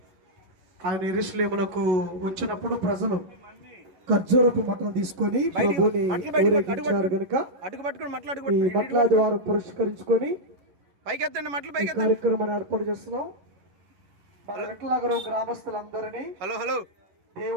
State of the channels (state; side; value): late; left; 11 ms